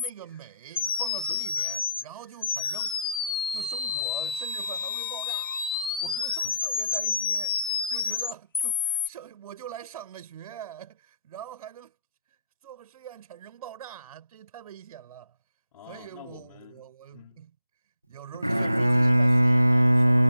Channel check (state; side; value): inverted; both; correlation -0.75